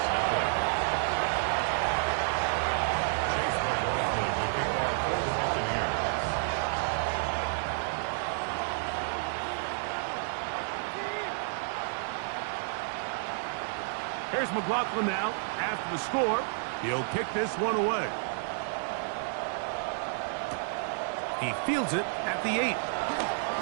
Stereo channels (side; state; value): left; silent; digital silence